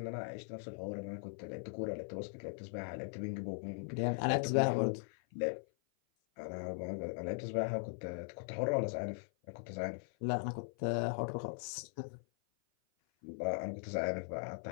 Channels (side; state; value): right; silent; 51 dB below the other